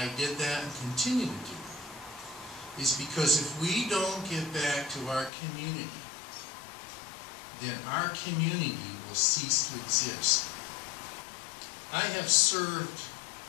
did that and continue to do it is because if we don't get back to our community, then our community will cease to exist. I have served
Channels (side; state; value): right; drops out; at 5.3 s